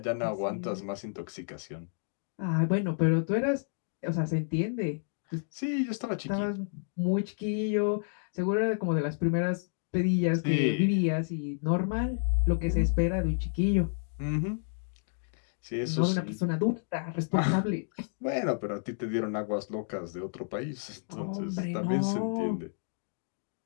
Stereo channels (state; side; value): silent; right; digital silence